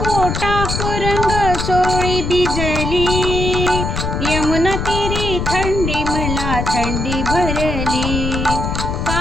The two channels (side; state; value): left; noise; rumble, 2 dB below the sound